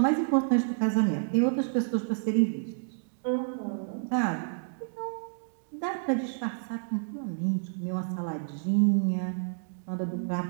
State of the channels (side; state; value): left; silent; digital silence